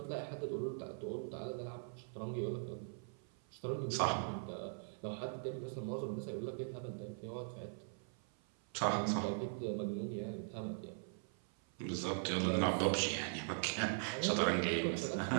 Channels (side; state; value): left; silent; 50 dB below the other